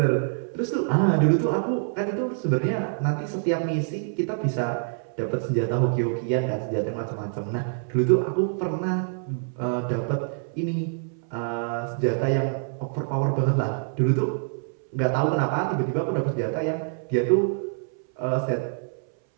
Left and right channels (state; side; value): silent; left; 61 dB below the other